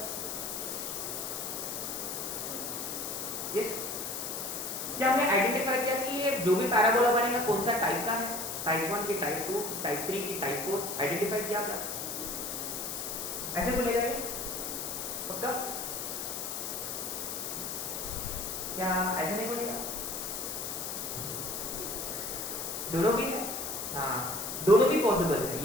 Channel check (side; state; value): left; noise; hiss, 4 dB below the sound